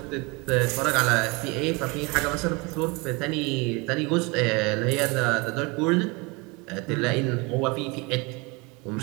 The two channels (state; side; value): quieter; left; 27.4 dB